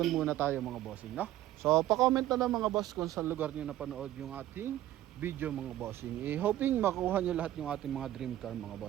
muna tayo mga bossing, no? So, pa-comment na lang mga boss kung saan lugar nyo napanood yung ating video mga bossing. Hoping makuha nyo lahat yung ating mga dream car mga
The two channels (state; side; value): quieter; left; 14.0 dB